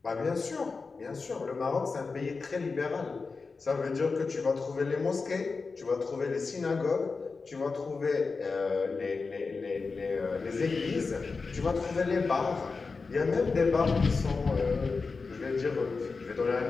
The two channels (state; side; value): quieter; right; 4.4 dB